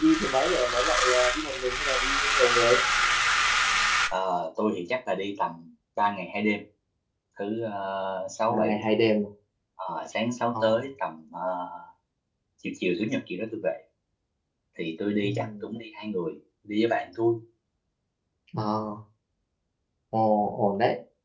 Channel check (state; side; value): identical; both; correlation 1.00